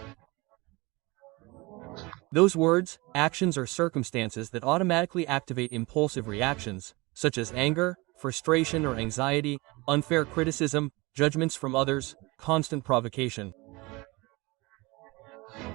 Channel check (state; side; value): quieter; left; 24.1 dB